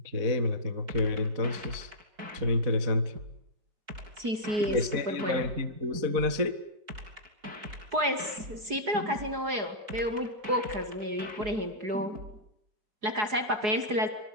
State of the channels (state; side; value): late; left; 4.8 ms